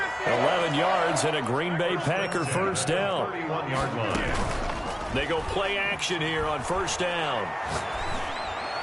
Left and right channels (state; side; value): identical; both; correlation 1.00